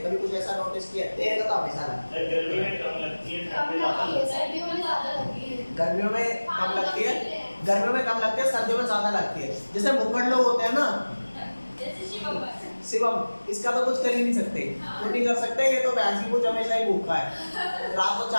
कभी कुछ ऐसा नोटिस किया है? तेरे का तो हमेशा लगता है। गर्मी में कम लगती है, ठंड में ज्यादा लगती है। सर्दियों में ज्यादा लगती है। गर्मियों में कम लगती है, गर्मियों में कम लगती है, सर्दियों में ज्यादा लगती है। जैसे भूखड़ लोग होते हैं ना, जैसे शिवम शिवम, इसका तो कुछ कर ही नहीं सकते, कुछ नहीं कर सकते। ये तो भैंसी को हमेशा ही भूखा है, रात को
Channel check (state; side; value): inverted; both; correlation -1.00